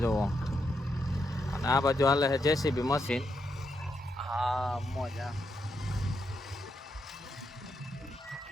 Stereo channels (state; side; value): normal; both; correlation 0.81